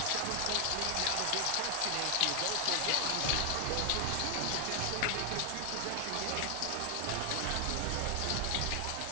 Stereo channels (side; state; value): both; different; correlation 0.00